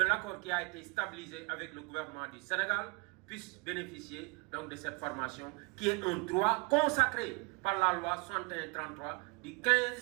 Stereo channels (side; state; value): left; quieter; 29.5 dB